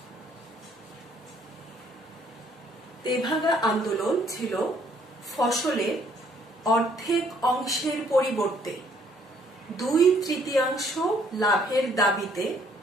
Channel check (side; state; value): both; normal; correlation 0.64